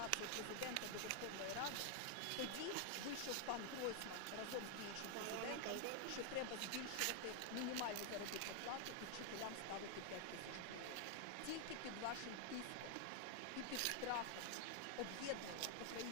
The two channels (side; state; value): both; different; correlation 0.00